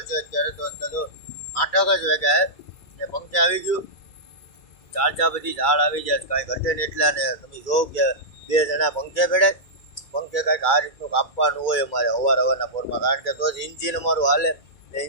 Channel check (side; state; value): right; late; 2.3 ms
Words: છે. અત્યારે તો 8 જ વાગ્યા ને પંખે આવી ગયું. ચાર બધી ઝાડ આવી જાય કાંઈ ઘટે ને એટલા. ને તમે જો કે 2 જણા પંખે બેઠે. પંખે કાંઈક આ રીતનું કાપવાનું હોય અમારે હવારના પોરમાં. કારણ કે તો જ ઇન્જિન અમારું હાલે ને